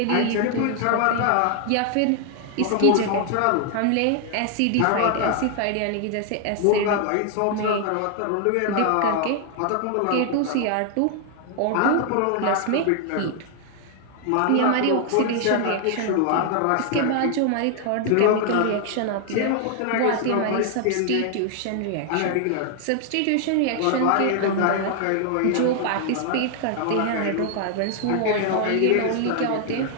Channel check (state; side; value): different; both; correlation 0.00